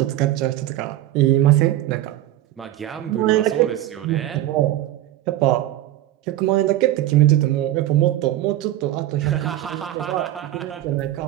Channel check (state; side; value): quieter; left; 14.0 dB